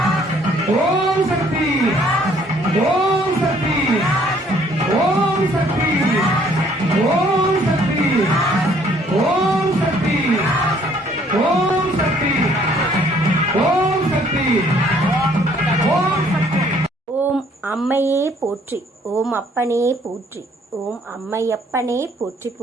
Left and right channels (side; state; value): both; normal; correlation 0.62